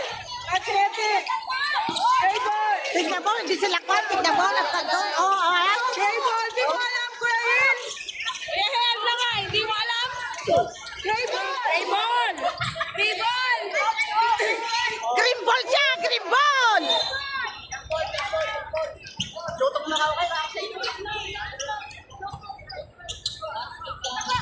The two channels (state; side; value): identical; both; correlation 1.00